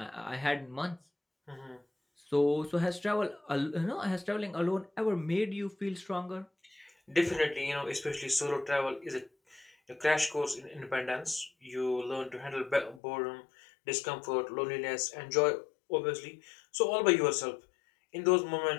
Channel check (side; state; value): right; drops out; at 13.0 s